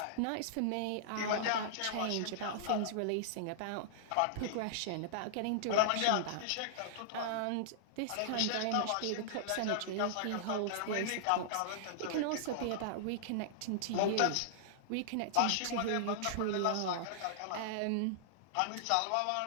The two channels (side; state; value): both; different; correlation -0.01